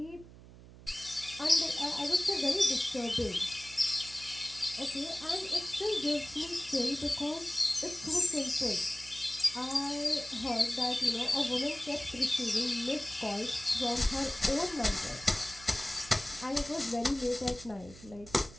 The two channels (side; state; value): right; noise; hum, 19 dB below the sound